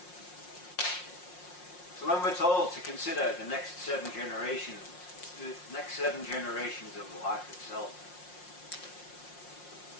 So when we're told to consider the next 7 generations, the next 7 generations of life itself,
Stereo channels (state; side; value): late; right; 5.6 ms